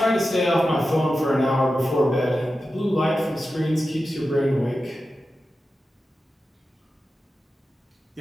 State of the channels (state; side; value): normal; both; correlation 0.92